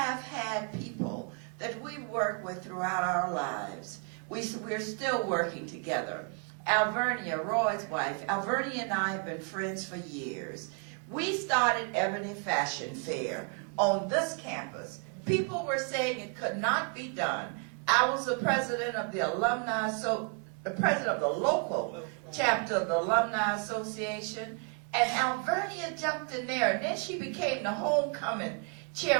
had people that we work with throughout our lives. We're still working together. Alvernia, Roy's wife, Alvernia and I have been friends for years. We started Ebony Fashion Fair on this campus. People were saying it could not be done. I was the president of the alumni, the president of the local chapter of the Alumni Association, and Alvernia jumped in there, and then she became the homecoming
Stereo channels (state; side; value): quieter; left; 38.5 dB